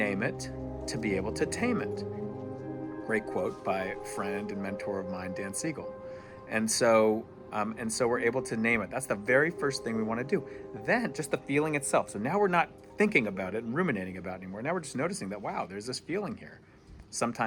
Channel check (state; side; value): identical; both; correlation 1.00